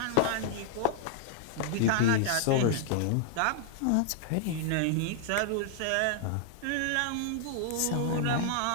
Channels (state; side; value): different; both; correlation -0.01